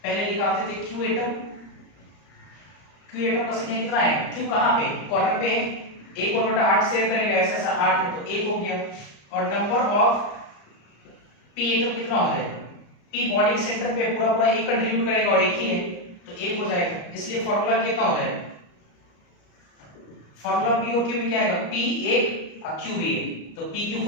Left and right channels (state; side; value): late; right; 34 ms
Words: पहले निकालते थे Q एटम, Q एटम का संख्या कितना है? Q कहां पे? कॉर्नर पे, 1/8 शेयर करेगा, ऐसा ऐसा 8 है तो 1 हो गया। और नंबर ऑफ पी एटम कितना हो जाएगा, पी बॉडी के सेंटर पे पूरा पूरा एक कंट्रीब्यूट करेगा और एक ही है तो एक हो जाएगा, इसलिए फॉर्मूला कितना हो जाएगा, फॉर्मूला पी और क्यू में क्या आएगा, पी एक और क्यू भी एक, तो पी क्यू